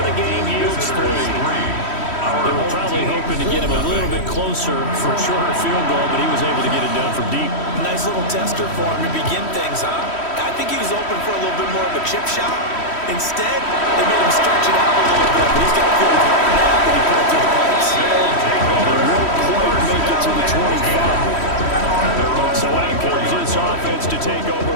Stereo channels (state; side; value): late; right; 3.1 ms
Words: the game yields 3. They were probably hoping to get him a little bit closer for a shorter field goal, but he was able to get it done from deep. Nice little tester for him to begin things, huh? I think he was open for a little bit more of a chip shot. Instead, they made him stretch it out a little bit, but he's got to feel great now when he put it through the pipes. They won't quite make it to the 25. So out comes this offense to take over